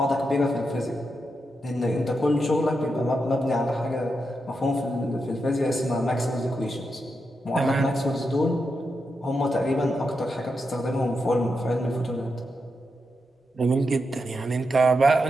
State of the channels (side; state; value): both; normal; correlation 0.86